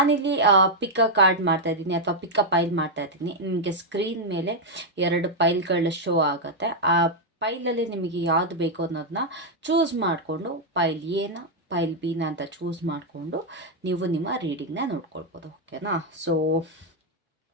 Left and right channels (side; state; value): both; normal; correlation -0.01